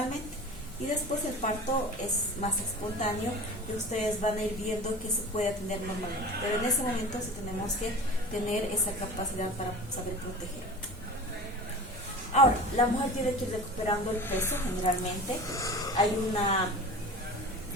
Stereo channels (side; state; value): both; normal; correlation 0.36